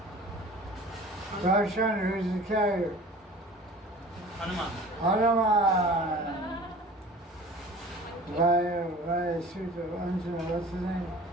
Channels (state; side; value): normal; both; correlation 0.43